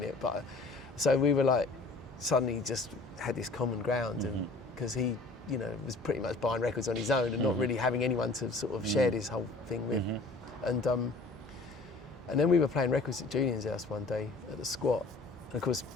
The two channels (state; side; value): quieter; right; 3.4 dB